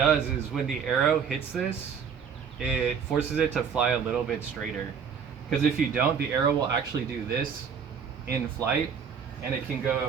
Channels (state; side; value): quieter; left; 6.9 dB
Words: is when the arrow hits this, it forces it to fly a little bit straighter, because if you don't, the arrow will actually do this in flight and it can